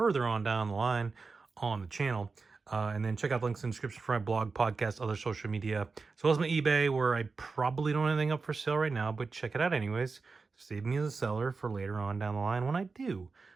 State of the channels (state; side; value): quieter; left; 4.4 dB